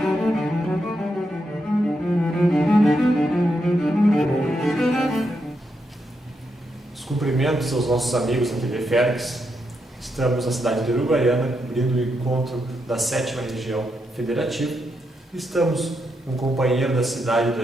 Os cumprimentos aos nossos amigos da TV Fergues. Estamos na cidade de Uruguaiana, abrindo o encontro da 7ª Região Federativa. Estamos com um companheiro da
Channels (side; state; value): both; normal; correlation 0.82